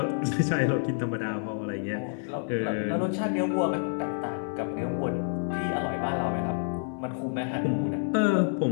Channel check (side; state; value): right; silent; 59 dB below the other